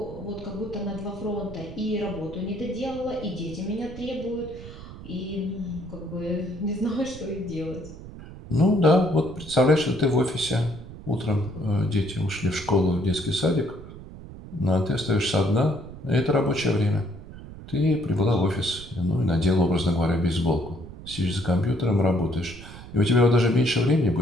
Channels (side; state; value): right; noise; rumble, 14 dB below the sound